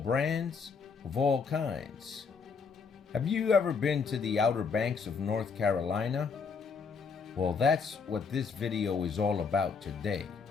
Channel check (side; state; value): right; quieter; 5.4 dB